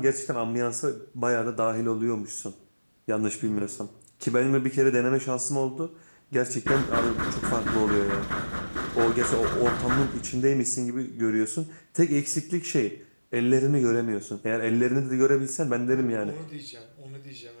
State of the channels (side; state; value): both; inverted; correlation -1.00